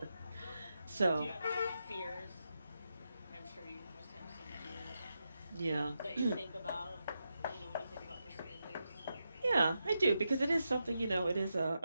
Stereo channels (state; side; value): inverted; both; correlation -0.87